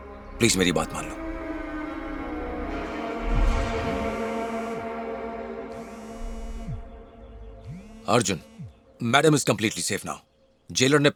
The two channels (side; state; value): both; identical; correlation 1.00